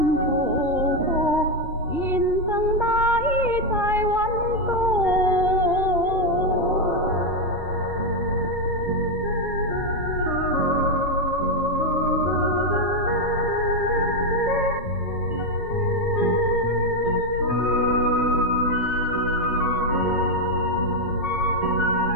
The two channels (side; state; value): both; normal; correlation 0.05